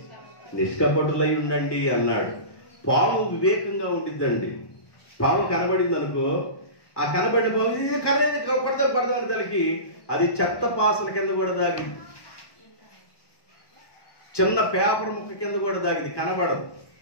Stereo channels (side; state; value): right; late; 1.1 ms